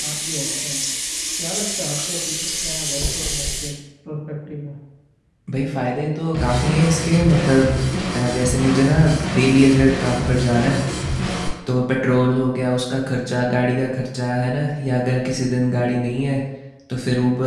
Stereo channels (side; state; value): both; identical; correlation 1.00